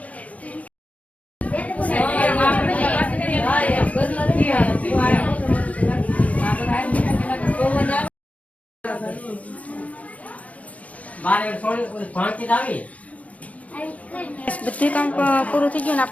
બધું કામ પૂરું થઈ ગયું ને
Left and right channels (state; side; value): late; right; 0.067 ms